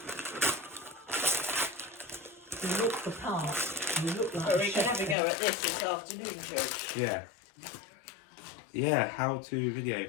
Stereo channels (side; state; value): right; drops out; at 5.2 s